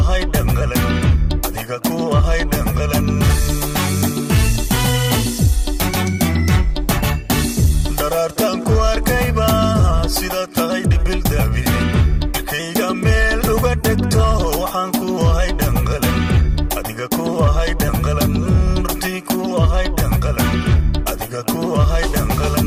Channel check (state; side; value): identical; both; correlation 1.00